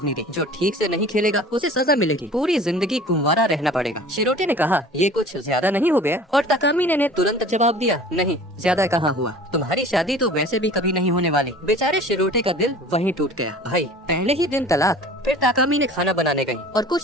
दी, जो ठीक से नहीं खेलेगा उसे सजा मिलेगी, पूरी जिंदगी कुंवारा रहना पड़ेगा। शिरोटे ने कहा ये कुछ ज्यादा नहीं हो गया? और ताकामी ने तुरंत जवाब दिया, नहीं ज्यादा कहाँ हुआ, तुम्हारी शादी तो वैसे भी कभी नहीं होने वाली। बेचारे शिरोटे का दिल वहीं टूट गया। भाई पहले ही दिन तलाक। फिर ताकामी ने खाना बनाने गई और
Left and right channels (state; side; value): normal; both; correlation 0.44